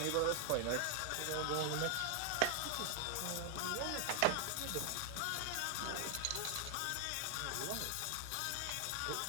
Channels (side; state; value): both; different; correlation 0.00